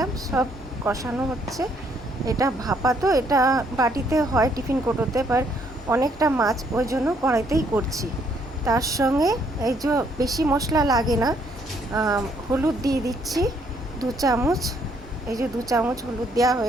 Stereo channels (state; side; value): normal; both; correlation 0.68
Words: সব কষানো হচ্ছে। এটা ভাপা, তো এটা বাটিতে হয়, টিফিন কোটোতে, বাট অনেকটা মাছ ওই জন্য কড়াইতেই করছি। তার সঙ্গে এই যে বেশি মশলা লাগে না, হলুদ দিয়ে দিচ্ছি 2 চামচ। এই যে 2 চামচ হলুদ দেওয়া